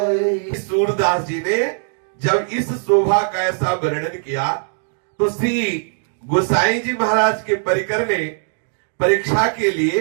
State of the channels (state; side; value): silent; left; digital silence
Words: सूरदास जी ने जब इस शोभा का ऐसा वर्णन किया तो श्री गोसाई जी महाराज के परिकर ने परीक्षा के